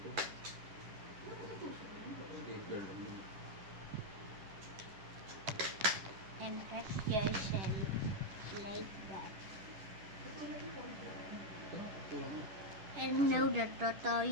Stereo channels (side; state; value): left; late; 10 ms